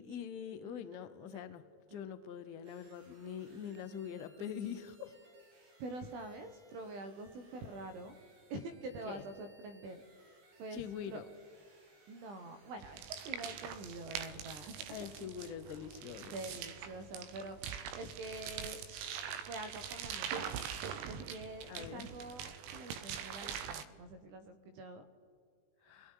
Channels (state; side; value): late; left; 20 ms